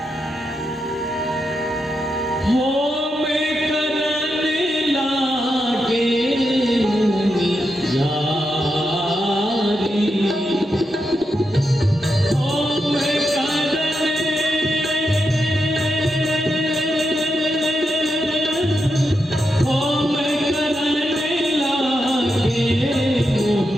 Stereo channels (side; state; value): both; normal; correlation 0.85